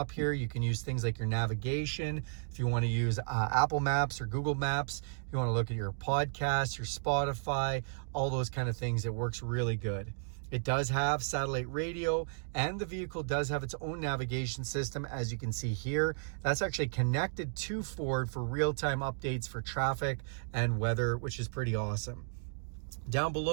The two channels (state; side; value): silent; left; digital silence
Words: here. You can use things like your navigation. If you want to use Apple Maps or Google Maps, if you want to look at your podcasts, your Spotify, all those kind of things, it works really good. It does have satellite radio, and the vehicle does have its own navigation system, as you can see here. That's actually connected to Ford for real-time updates for traffic and weather, which is pretty awesome. Down